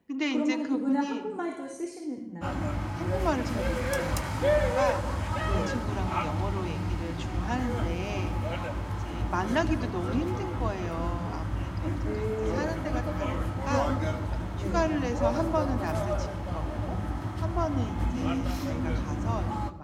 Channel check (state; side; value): identical; both; correlation 1.00